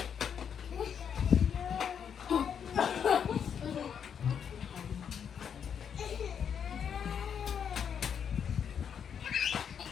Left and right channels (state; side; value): quieter; right; 7.7 dB